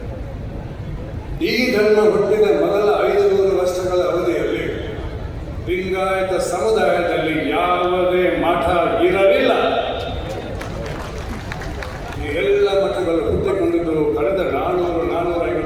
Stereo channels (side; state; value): both; identical; correlation 1.00